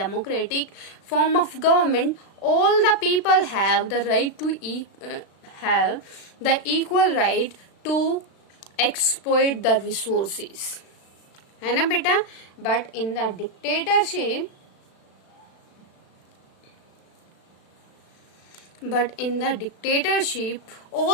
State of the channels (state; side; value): late; right; 36 ms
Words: all the people have the right to have the equal right to exploit the resources. है ना बेटा? But in the dictatorship,